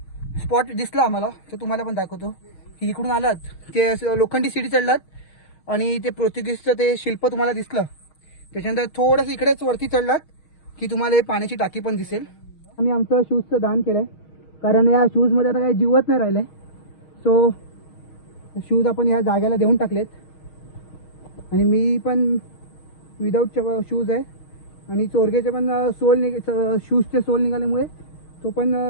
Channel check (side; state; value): right; late; 6.4 ms